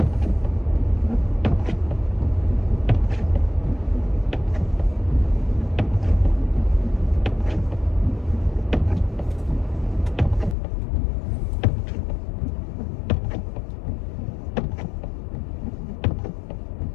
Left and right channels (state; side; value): drops out; right; at 10.6 s